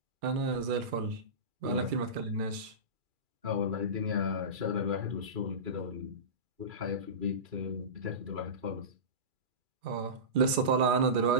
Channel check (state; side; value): late; left; 2.4 ms